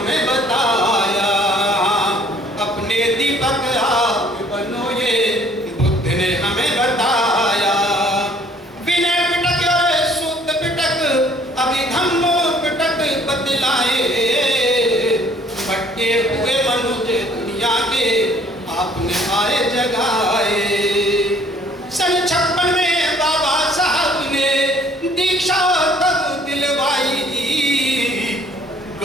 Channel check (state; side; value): normal; both; correlation 0.58